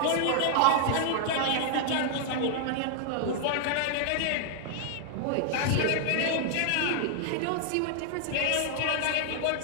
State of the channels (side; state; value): both; different; correlation -0.01